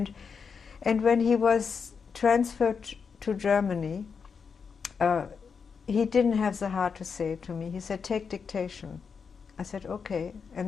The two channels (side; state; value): right; quieter; 5.9 dB